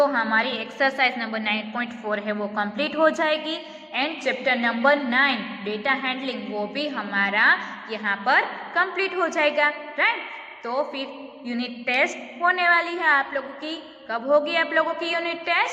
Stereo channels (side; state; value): both; identical; correlation 1.00